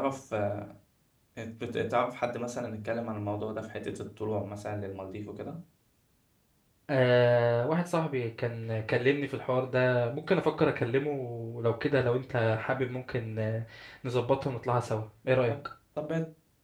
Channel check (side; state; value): both; identical; correlation 1.00